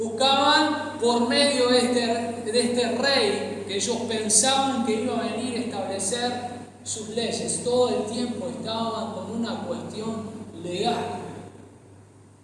por medio de este rey que ellos pensaban que iba a venir a establecer sus leyes. Todo el tiempo estaban con una cuestión legal.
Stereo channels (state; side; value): identical; both; correlation 1.00